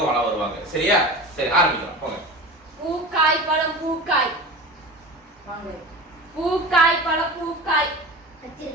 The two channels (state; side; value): normal; both; correlation 0.32